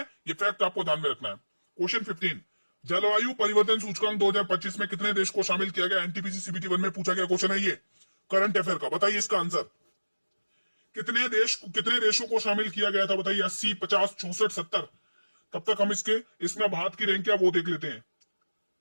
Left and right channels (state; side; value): inverted; both; correlation -1.00